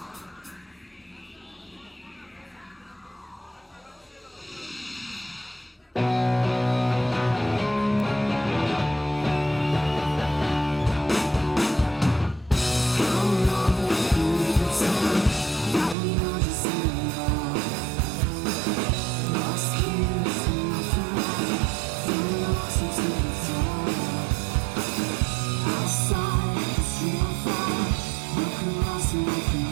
Outside, it's real far.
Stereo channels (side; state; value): left; drops out; at 16.0 s